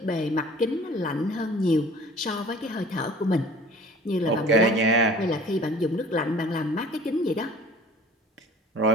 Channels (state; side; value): normal; both; correlation 0.47